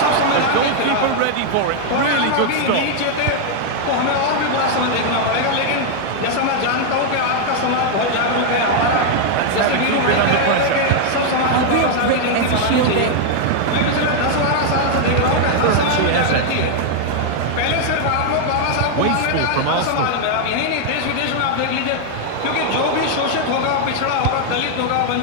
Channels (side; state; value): both; different; correlation 0.00